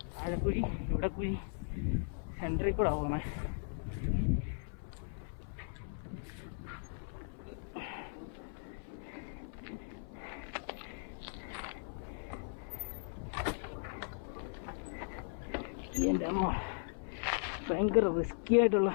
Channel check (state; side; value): silent; right; 52 dB below the other